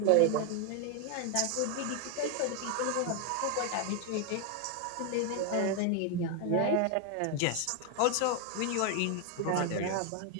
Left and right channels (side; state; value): both; different; correlation 0.01